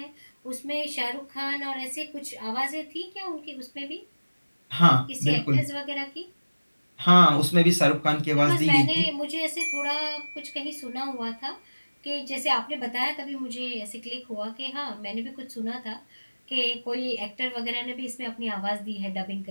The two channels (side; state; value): both; inverted; correlation -1.00